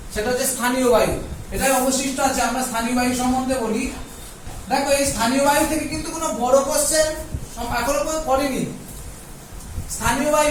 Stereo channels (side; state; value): both; identical; correlation 1.00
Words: সেটা হচ্ছে স্থানীয় বায়ু। এটাই অবশিষ্ট আছে। আমরা স্থানীয় বায়ু সম্বন্ধে বলি। দেখো এই স্থানীয় বায়ু থেকে কিন্তু কোনো বড় কোশ্চেন এখনো করেনি। স্থানীয়